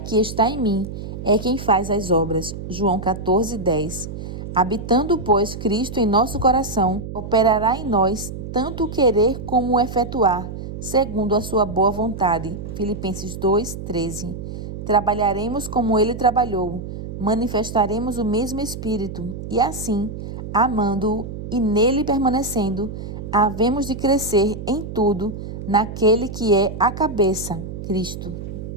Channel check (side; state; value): right; noise; hum, 9 dB below the sound